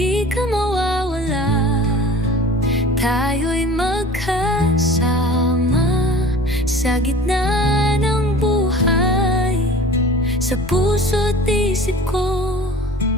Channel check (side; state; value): both; normal; correlation 0.42